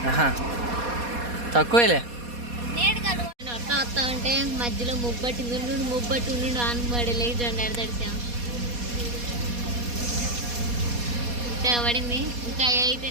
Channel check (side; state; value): left; late; 4.2 ms